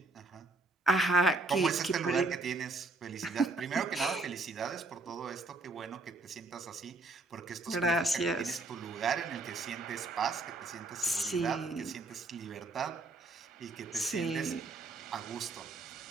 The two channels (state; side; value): quieter; left; 3.3 dB